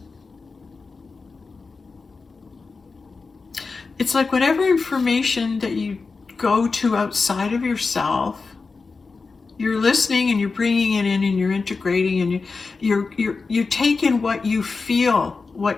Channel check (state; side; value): quieter; right; 4.4 dB